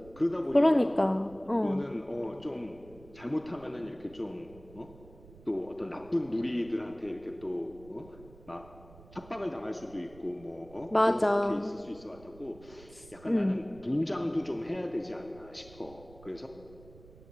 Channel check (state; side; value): noise; right; rumble, 21 dB below the sound